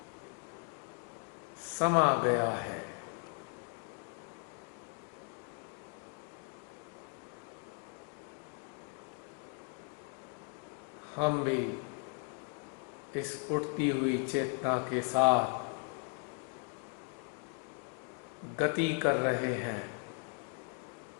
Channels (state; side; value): quieter; right; 38.3 dB